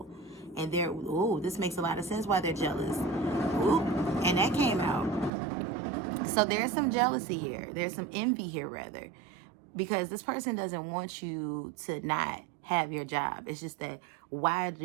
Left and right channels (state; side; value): drops out; left; at 5.3 s